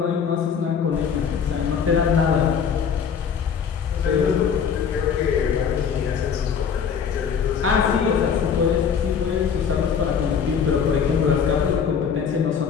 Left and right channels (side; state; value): right; quieter; 6.9 dB